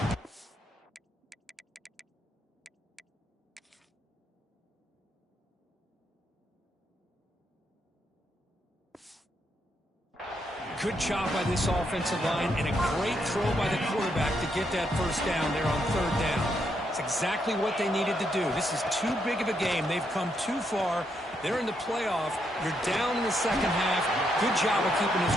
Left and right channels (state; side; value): normal; both; correlation 0.78